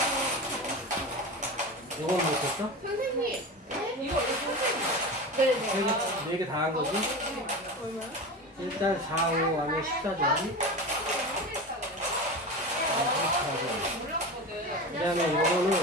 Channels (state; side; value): normal; both; correlation 0.27